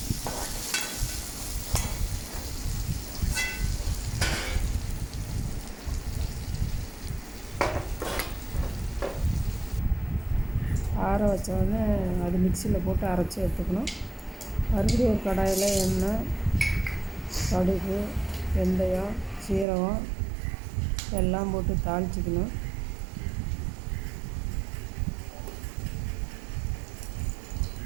ஆற வச்சோடனே அது மிக்சியில் போட்டு அரைச்சி எடுத்துக்கணும். மறுபடியும் ஒரு கடாயில் எண்ணெய், கடுகு, வெந்தயம், சீரகம் எல்லாம் போட்டு தாளிச்சிக்கணும்.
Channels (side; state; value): left; drops out; at 19.7 s